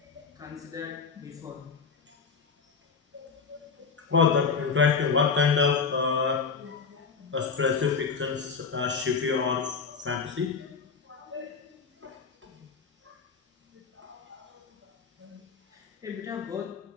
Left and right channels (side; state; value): right; quieter; 5.4 dB